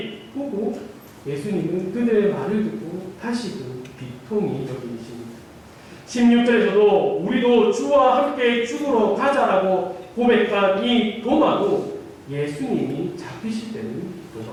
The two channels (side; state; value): both; identical; correlation 1.00